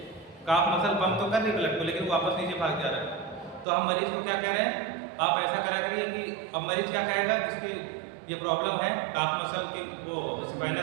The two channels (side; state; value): left; drops out; at 3.7 s